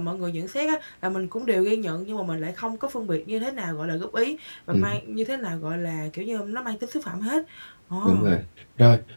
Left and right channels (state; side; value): inverted; both; correlation -1.00